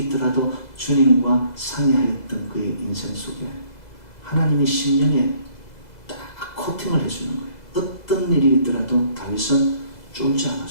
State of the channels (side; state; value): right; late; 2.0 ms